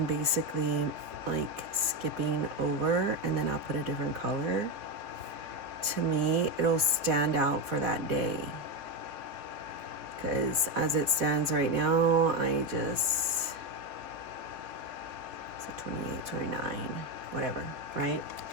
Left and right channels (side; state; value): left; late; 4.1 ms